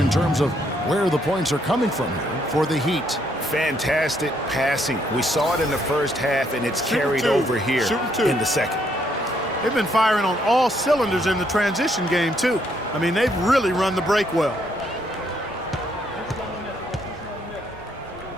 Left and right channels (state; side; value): normal; both; correlation 0.72